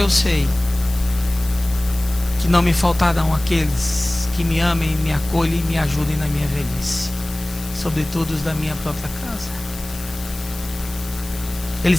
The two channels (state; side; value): noise; left; hiss, 15 dB below the sound